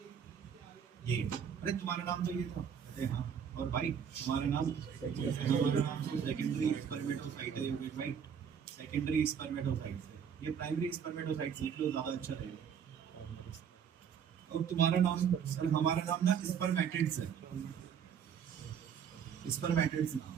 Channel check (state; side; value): quieter; left; 7.7 dB